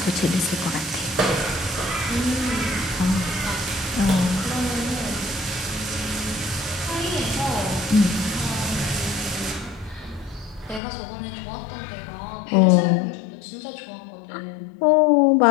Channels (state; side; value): drops out; right; at 10.8 s